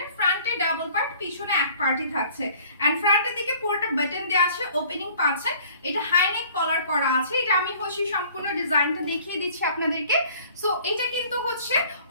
ফ্রন্টে ডাবল পার্ট, পিছনে এক পার্টই থাকছে এন্ড ফ্রন্টের দিকে পুরোটা বাটন দেওয়া আছে, ওপেনিং পাচ্ছেন। এটা হাই নেক কলার করা আছে। এটা আমি হচ্ছে সম্পূর্ণ ডিজাইনটা দেখিয়ে দিচ্ছি আপনাদেরকে। সো এটা কিন্তু হচ্ছে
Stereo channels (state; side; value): inverted; both; correlation -0.52